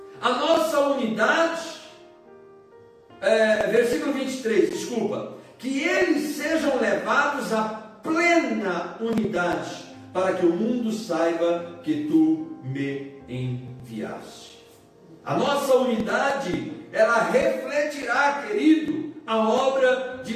a nossa unidade, versículo 23, desculpa, que eles sejam levados à plena unidade, para que o mundo saiba que tu me enviaste. A nossa unidade, ela refletirá, querido, a obra de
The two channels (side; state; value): both; identical; correlation 1.00